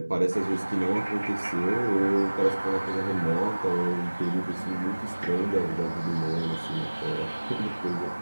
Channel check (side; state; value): both; inverted; correlation -1.00